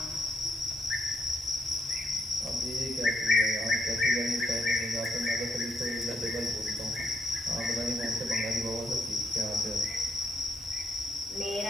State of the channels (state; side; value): normal; both; correlation 0.73